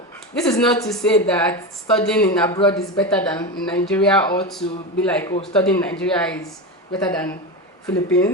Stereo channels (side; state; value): both; normal; correlation 0.20